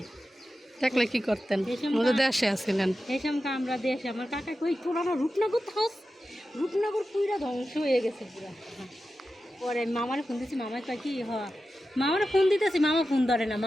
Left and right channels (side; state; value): both; normal; correlation 0.92